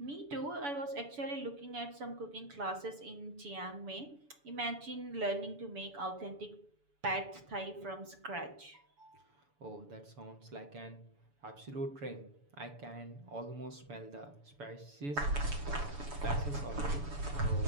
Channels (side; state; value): left; late; 7.0 ms